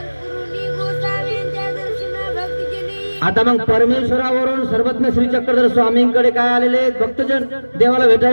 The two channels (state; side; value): inverted; both; correlation -1.00